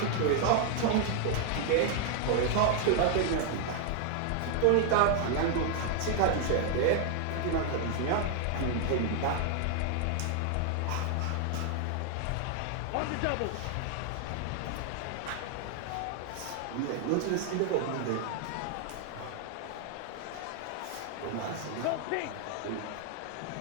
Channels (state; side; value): different; both; correlation 0.00